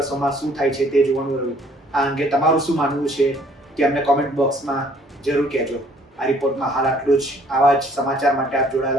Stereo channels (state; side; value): normal; both; correlation 0.60